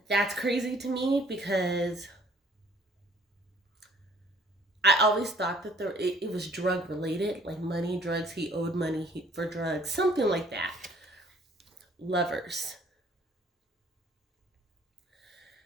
that's crazy to me because I always thought that it was drug related, like money, drugs. He owed money for drugs, something like that. Lovers.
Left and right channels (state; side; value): normal; both; correlation 0.57